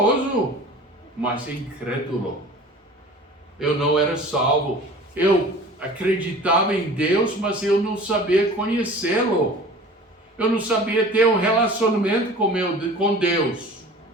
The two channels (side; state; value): both; normal; correlation 0.43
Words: mas incrédulo. Eu não era salvo. Eu acreditava em Deus, mas eu não sabia conhecê-lo. Eu não sabia ter um relacionamento com Deus.